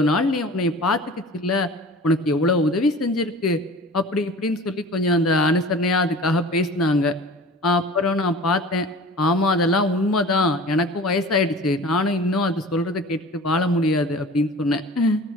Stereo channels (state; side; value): normal; both; correlation 0.40